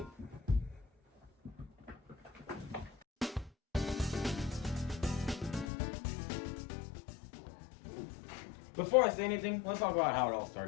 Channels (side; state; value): right; drops out; at 5.7 s